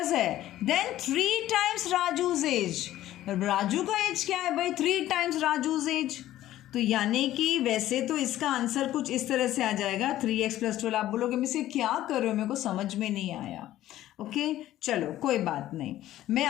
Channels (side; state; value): right; quieter; 13.9 dB